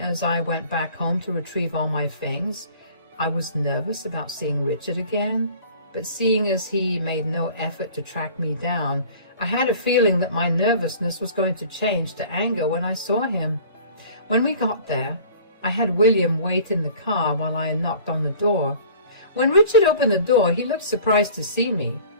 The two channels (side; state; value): both; inverted; correlation -0.47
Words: I went back home to retrieve all my things. I was nervous about seeing Richard again, but seeing as he made no effort to track me down, I had a feeling that my nervousness was going to change to anger when I saw him. When we got there, I had William wait in the car while I knocked on the door. When Richard opened the door, he looked surprised to see me.